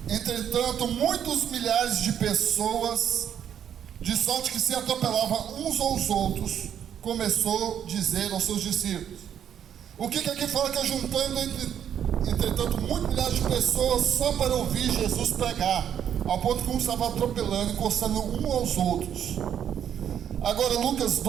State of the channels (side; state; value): left; quieter; 9.2 dB